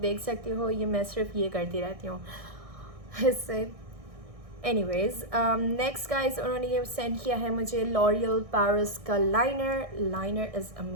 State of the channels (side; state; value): left; late; 1.6 ms